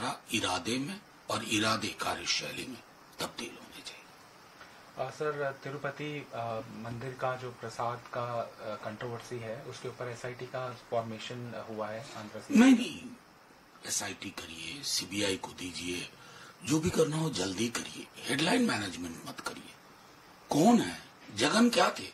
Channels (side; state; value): both; identical; correlation 1.00